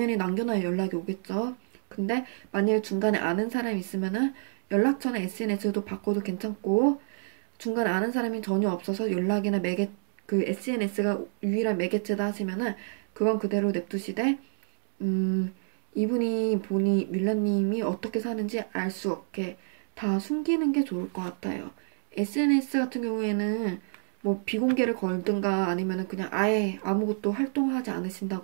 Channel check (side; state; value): left; silent; 59 dB below the other